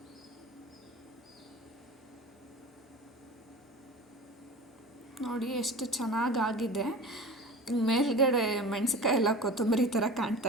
ನೋಡಿ ಎಷ್ಟು ಚೆನ್ನಾಗಾಗಿದೆ. ಮೇಲ್ಗಡೆ ಮೆಣಸಿನ್ಕಾಯಿ ಎಲ್ಲ ಕೊತ್ತಂಬರಿ ಥರ ಕಾಣ್ತಾ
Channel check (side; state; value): both; normal; correlation 0.35